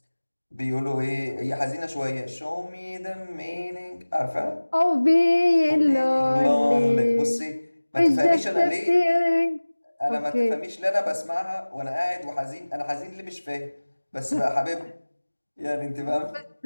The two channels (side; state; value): both; inverted; correlation -1.00